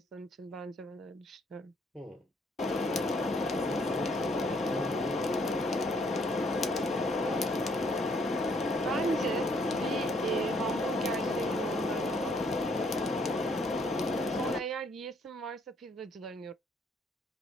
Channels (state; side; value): normal; both; correlation 0.67